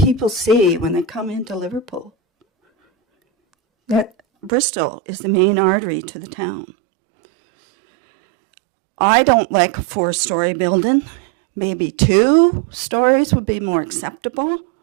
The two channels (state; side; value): drops out; left; at 4.5 s